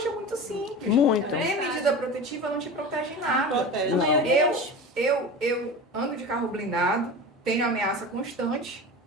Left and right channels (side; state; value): both; normal; correlation 0.31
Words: é muito simples. Muito. Ter medida protetiva não te protege nada. Não protege, não. Eu ando de carro blindado, tenho ameaça constante